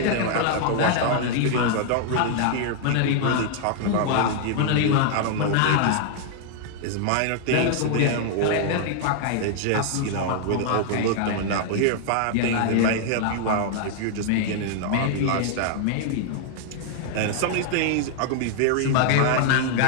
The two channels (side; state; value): both; different; correlation 0.00